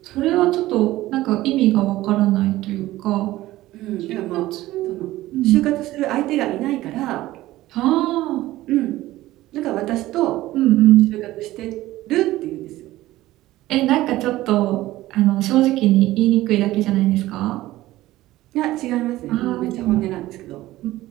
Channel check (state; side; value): quieter; left; 16.4 dB